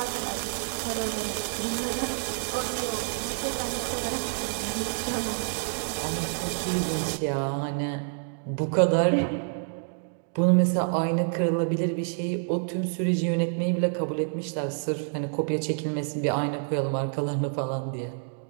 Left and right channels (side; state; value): left; silent; digital silence